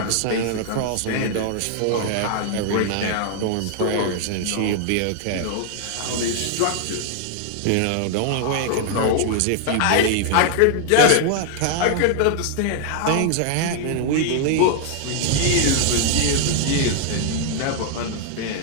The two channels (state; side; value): different; both; correlation 0.00